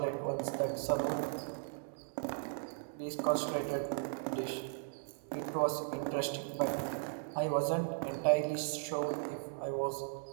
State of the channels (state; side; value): silent; left; 53 dB below the other